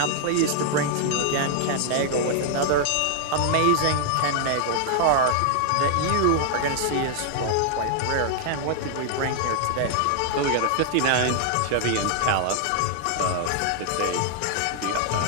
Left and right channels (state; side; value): different; both; correlation 0.00